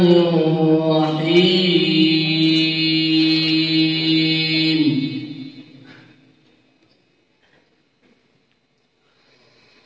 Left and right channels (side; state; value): both; identical; correlation 1.00